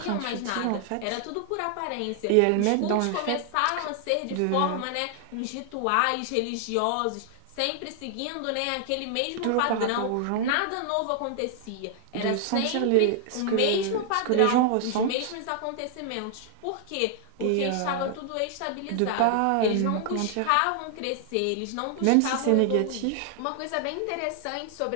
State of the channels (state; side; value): different; both; correlation 0.00